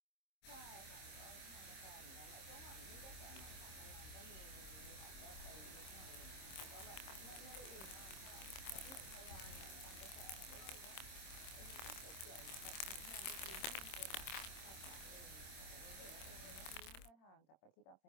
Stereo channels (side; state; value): right; late; 26 ms